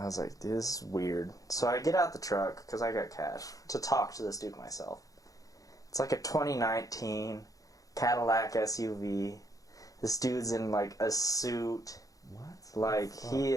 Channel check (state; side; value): late; right; 0.17 ms